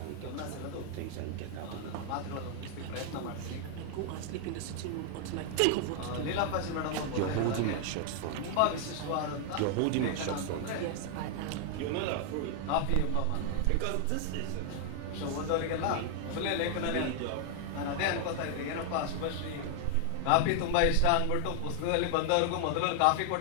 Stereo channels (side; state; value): both; different; correlation 0.00